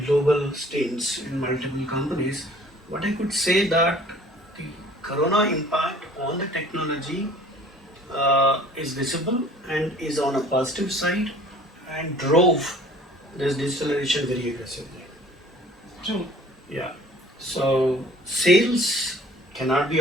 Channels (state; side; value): normal; both; correlation 0.51